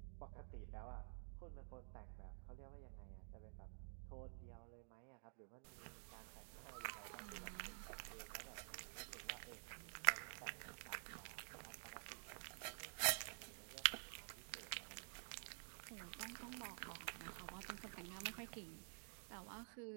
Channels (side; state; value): left; silent; digital silence